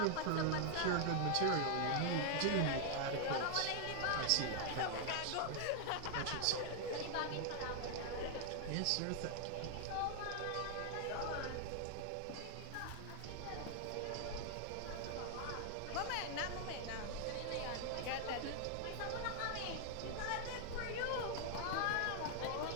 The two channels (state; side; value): different; both; correlation 0.00